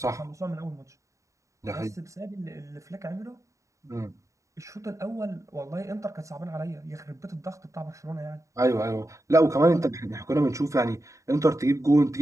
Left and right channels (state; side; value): late; left; 0.15 ms